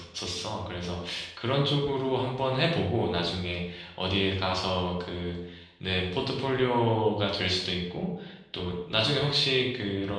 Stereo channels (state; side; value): identical; both; correlation 1.00